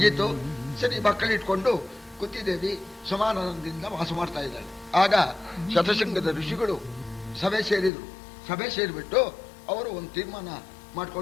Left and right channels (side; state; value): right; drops out; at 7.9 s